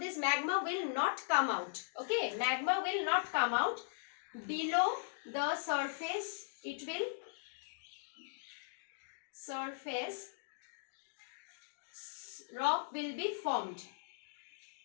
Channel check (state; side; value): silent; right; digital silence